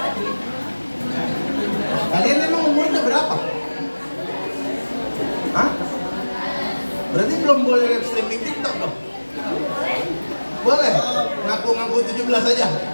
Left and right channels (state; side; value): inverted; both; correlation -1.00